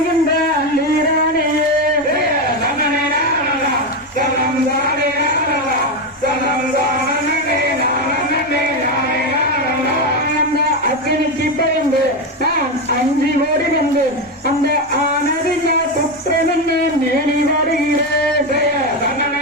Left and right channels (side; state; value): both; normal; correlation 0.11